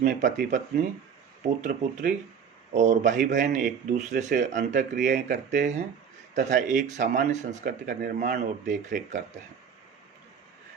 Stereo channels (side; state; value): left; quieter; 7.1 dB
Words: पति पत्नी, पुत्र पुत्री और भाई बहन एक दूसरे से अंतःक्रियाएं करते हैं तथा एक सामान्य संस्कृति का निर्माण और देखरेख करते हैं।